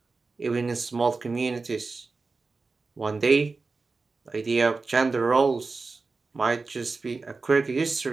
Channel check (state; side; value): quieter; left; 4.0 dB